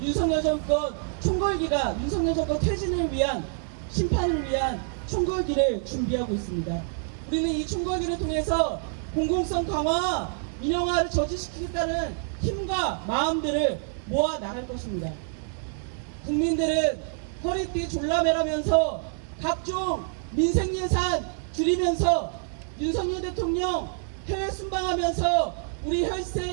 윤석열 정권 총궐기가 윤석열 정권 퇴진을 위한 심판을 위한 총궐기를 준비하고 있습니다. 우리는 이 총궐기를 통해서 공공성 강화, 민영화를 저지시키겠다는 힘과 마음들을 모아 나갈 것입니다. 국민들은 허리띠 졸라매라면서 각종 민생 예산 줄이면서 윤석열 대통령 해외 순방하면서 우리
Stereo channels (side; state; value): left; silent; 59 dB below the other